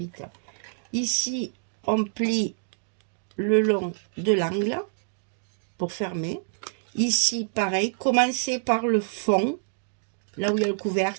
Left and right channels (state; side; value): silent; left; digital silence